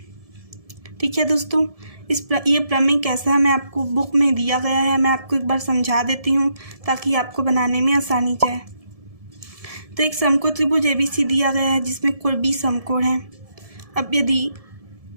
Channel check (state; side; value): late; left; 1.7 ms